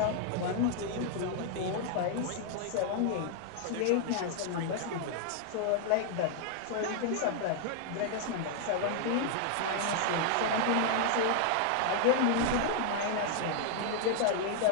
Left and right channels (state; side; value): different; both; correlation 0.00